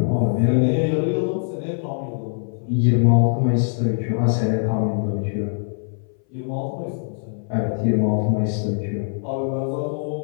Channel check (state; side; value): silent; right; 61 dB below the other